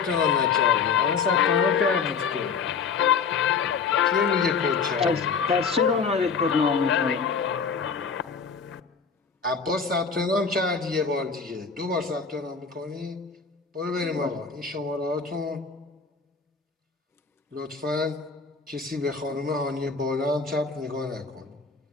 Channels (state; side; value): quieter; right; 5.5 dB